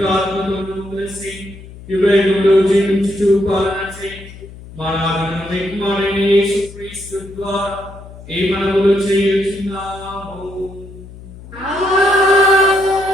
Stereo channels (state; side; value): noise; left; hum, 17 dB below the sound